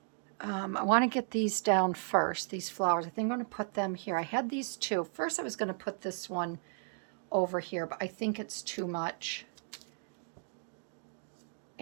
I want to get these down first, these flowers. I think I'm going to put them here. I had these two. First I was going to put this one over here, but I think it's too much.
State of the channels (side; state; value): left; silent; digital silence